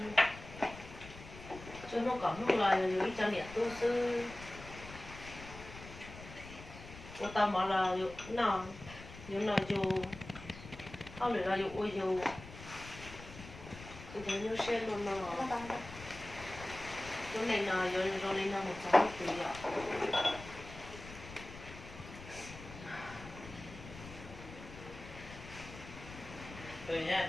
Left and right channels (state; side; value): noise; left; rumble, 14 dB below the sound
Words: cho nó có lúc là lấy cho nhiệt tu sư cô ta bảo là nó nhưng là dù không để là dù ôi dù tôi thấy như xe luôn nó chỗ này là rồi lên là 100 tỷ ạ thôi nha